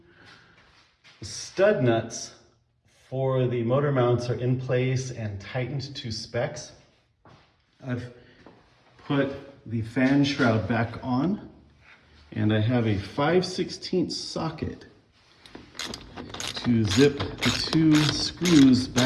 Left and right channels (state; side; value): identical; both; correlation 1.00